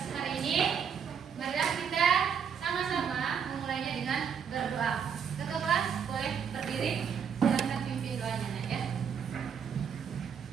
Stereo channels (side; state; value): left; quieter; 7.3 dB